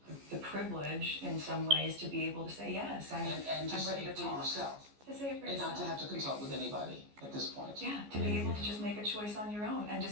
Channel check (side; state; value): left; late; 14 ms